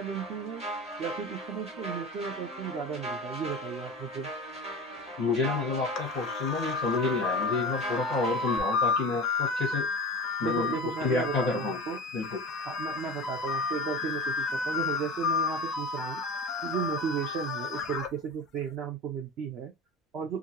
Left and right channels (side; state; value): both; normal; correlation 0.32